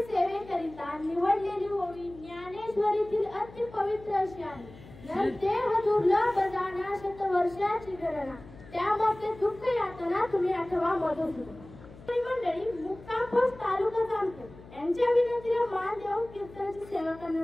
सेवेकरिता निवडलेली ओवी ज्ञानेश्वरीतील अति पवित्र अशी आहे। देह दुर्लभ जाणा शतवर्षाची गणना त्यामध्ये दुःख यातना तुम्ही आठवा मधुसूदन। मंडळी मुक्काम पोस्ट तालुका जामखेड यांच्या विनंतीला मान देऊन कीर्तनाची सेवा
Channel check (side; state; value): left; noise; hum, 19 dB below the sound